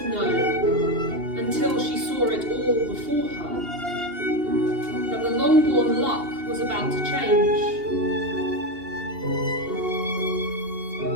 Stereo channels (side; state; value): left; late; 2.8 ms